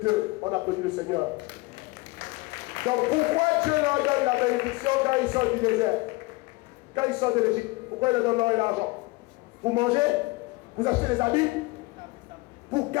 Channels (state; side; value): quieter; right; 23.7 dB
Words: d'eux. On applaudit le Seigneur. Donc pourquoi Dieu leur donne la bénédiction quand ils sortent du désert? Quand ils sortent de l'Égypte, pourquoi il leur donne l'or et l'argent? Pour manger? Vous achetez des habits? Pour